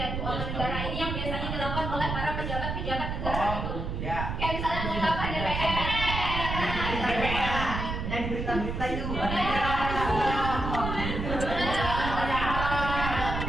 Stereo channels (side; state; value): right; noise; rumble, 3 dB below the sound